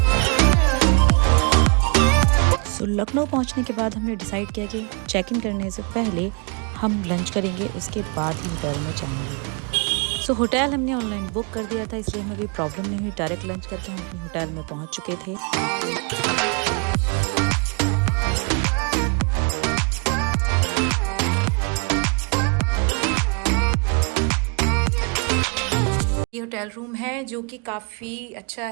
लखनऊ पहुंचने के बाद हमने डिसाइड किया कि चेक इन करने से पहले हम लंच करेंगे, उसके बाद ही होटल में जाएंगे। सो होटल हमने ऑनलाइन बुक कर दिया था, इसलिए हमें कोई प्रॉब्लम नहीं हुई। डायरेक्ट लंच करके हम अपने होटल में पहुंच चुके थे। ये होटल रूम है जो कि काफ़ी अच्छा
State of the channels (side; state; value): left; quieter; 35.1 dB